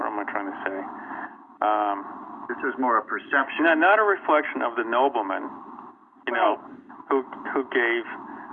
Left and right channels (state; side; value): identical; both; correlation 1.00